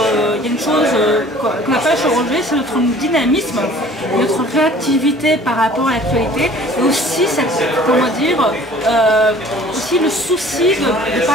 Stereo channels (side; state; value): both; normal; correlation 0.50